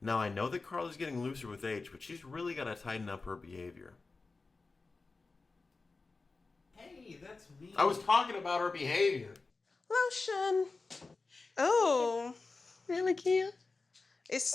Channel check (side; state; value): right; quieter; 3.9 dB